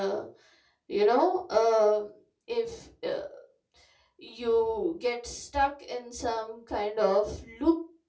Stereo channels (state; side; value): identical; both; correlation 1.00